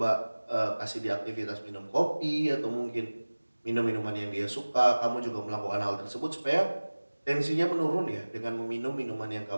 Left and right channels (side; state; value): both; inverted; correlation -1.00